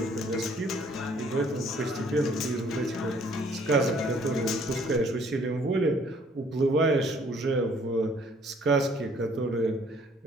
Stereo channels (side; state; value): both; normal; correlation 0.60